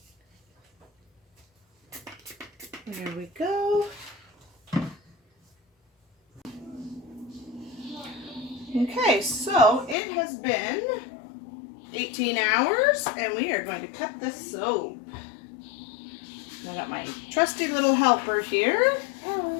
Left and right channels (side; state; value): right; drops out; at 10.0 s